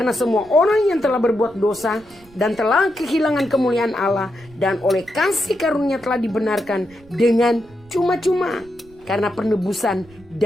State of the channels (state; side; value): noise; right; rumble, 26 dB below the sound